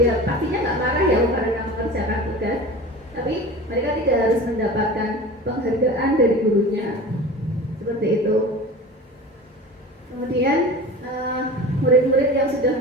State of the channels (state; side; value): normal; both; correlation 0.36